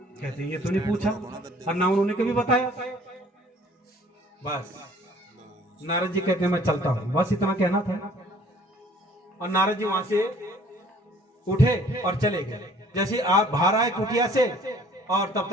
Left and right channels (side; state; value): both; normal; correlation 0.55